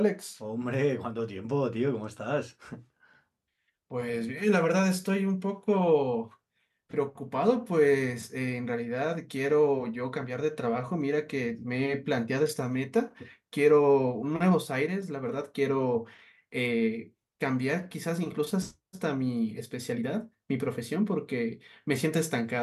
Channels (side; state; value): both; identical; correlation 1.00